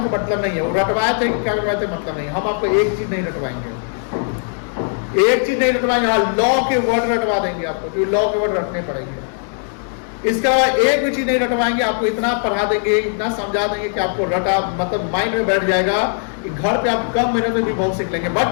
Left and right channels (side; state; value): right; silent; 61 dB below the other